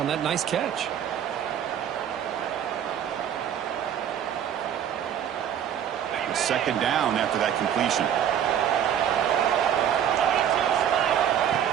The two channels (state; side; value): quieter; left; 9.5 dB